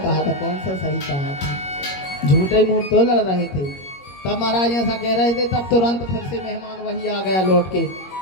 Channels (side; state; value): right; late; 21 ms